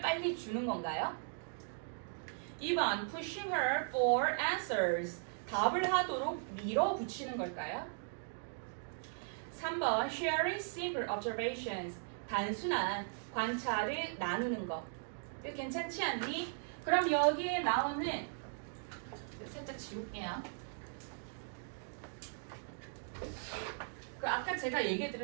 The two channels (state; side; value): silent; left; digital silence